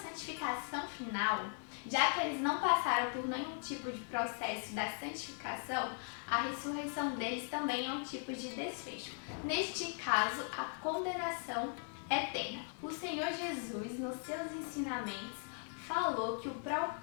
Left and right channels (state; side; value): silent; right; 52 dB below the other